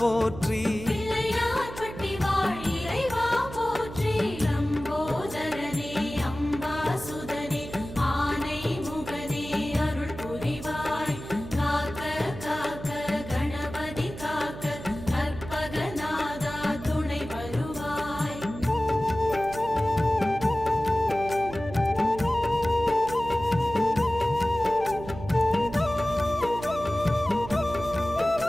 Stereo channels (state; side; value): noise; right; hum, 12 dB below the sound